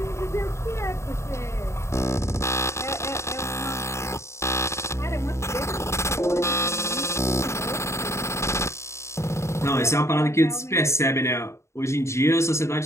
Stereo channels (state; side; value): late; right; 0.14 ms